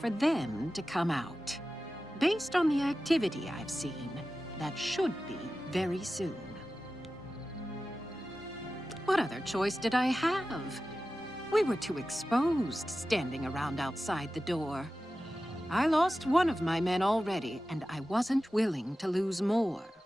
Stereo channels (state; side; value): normal; both; correlation 0.94